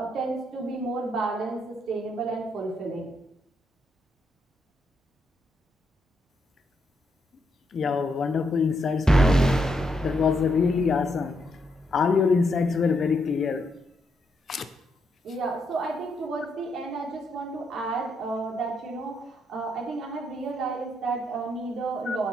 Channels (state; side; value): normal; both; correlation 0.78